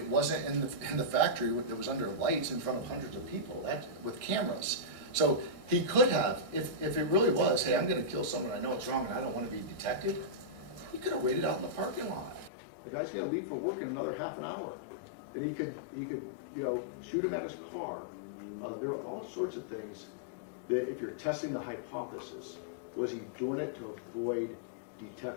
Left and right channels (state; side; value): drops out; right; at 12.5 s